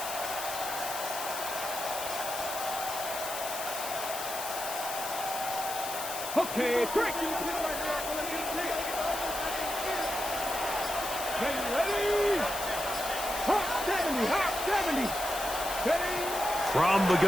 Okay, break. Ready? Hot 70, hot 70. Ready? From the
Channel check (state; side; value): noise; left; hiss, 6 dB below the sound